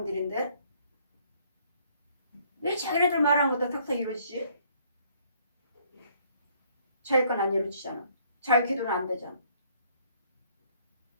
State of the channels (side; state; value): both; inverted; correlation -0.64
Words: 왜 자기네들 말한 것도 탁탁 이루어지지? 자기 건 안 이루어지잖아. 자기 기도는 안 되잖아.